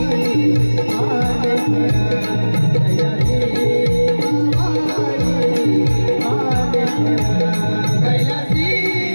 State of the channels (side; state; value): both; inverted; correlation -1.00